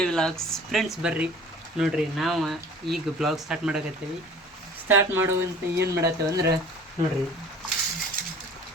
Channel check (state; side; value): normal; both; correlation 0.46